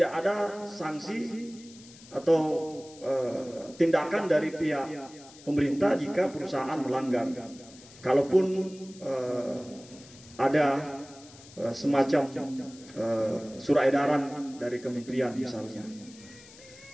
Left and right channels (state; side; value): noise; left; hiss, 21 dB below the sound